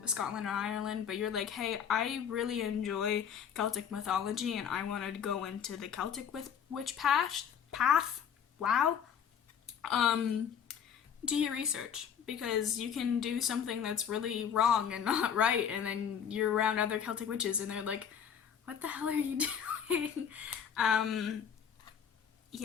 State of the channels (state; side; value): quieter; right; 8.0 dB